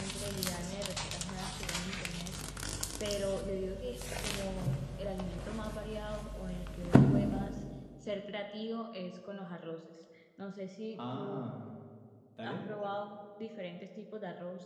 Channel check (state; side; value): identical; both; correlation 1.00